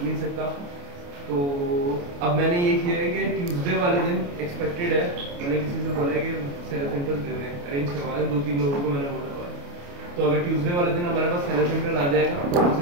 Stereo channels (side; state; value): left; late; 28 ms